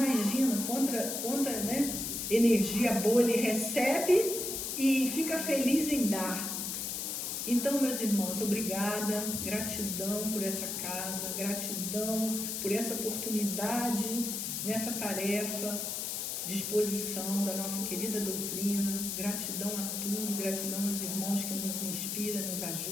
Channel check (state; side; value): noise; left; hiss, 3 dB below the sound